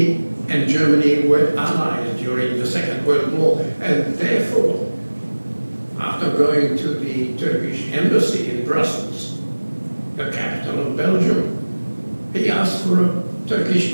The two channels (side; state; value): both; inverted; correlation -1.00